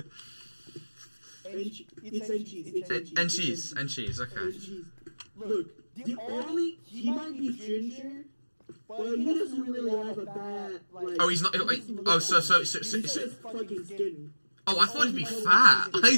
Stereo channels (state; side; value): inverted; both; correlation -1.00